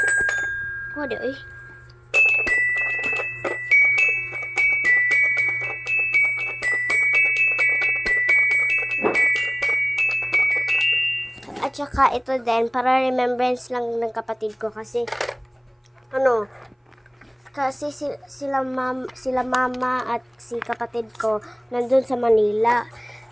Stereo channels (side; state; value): both; identical; correlation 1.00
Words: Wala eh. At saka ito din, para remembrance lang ng kapatid ko kasi sila mama at si kapatid ko nandun sa Manila.